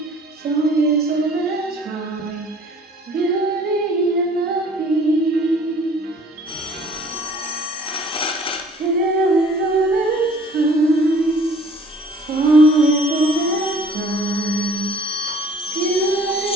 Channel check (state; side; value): normal; both; correlation 0.53